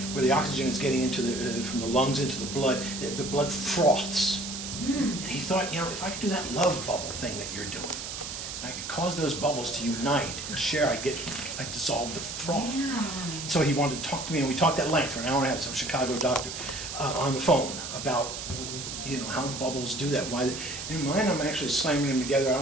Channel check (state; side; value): noise; right; hiss, 7 dB below the sound